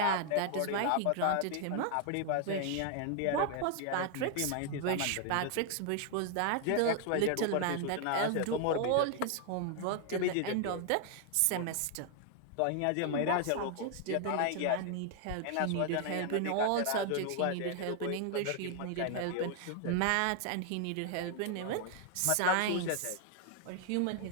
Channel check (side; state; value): both; different; correlation 0.00